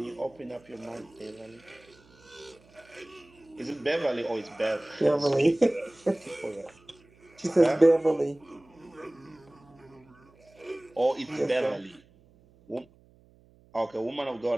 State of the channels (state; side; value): noise; right; hum, 29 dB below the sound